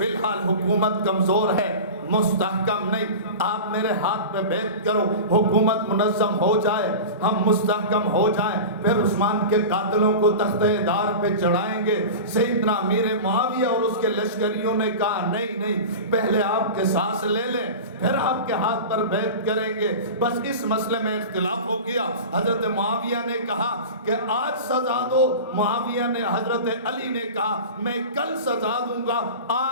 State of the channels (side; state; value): both; inverted; correlation -0.31